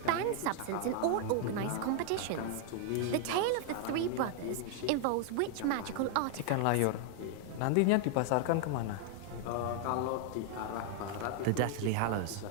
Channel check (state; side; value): different; both; correlation 0.00